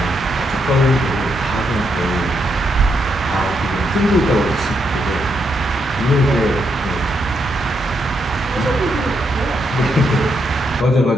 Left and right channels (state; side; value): normal; both; correlation 0.79